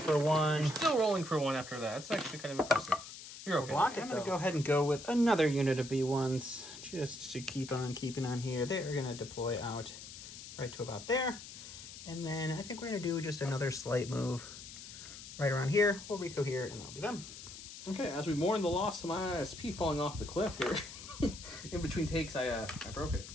1. You're still rolling for 1 after that. It's actually kind of impressive. You're okay. I'm going to go ahead and go with another unit of B1s just to keep on keeping on here. They're going to deploy out right to about there. And then I think we're going to do just another slight move right around here. We'll Rico here, and that'll be them. Okay, as we mourn the loss of my ISP falling off the cliff here, in between takes, I broke it.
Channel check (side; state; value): left; noise; hiss, 13 dB below the sound